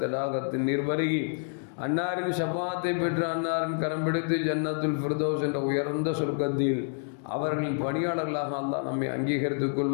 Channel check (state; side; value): silent; right; 59 dB below the other